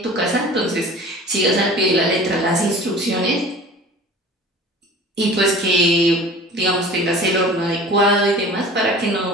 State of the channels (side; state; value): both; normal; correlation 0.42